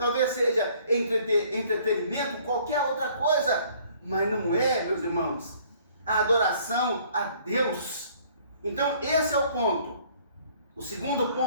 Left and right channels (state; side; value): inverted; both; correlation -0.58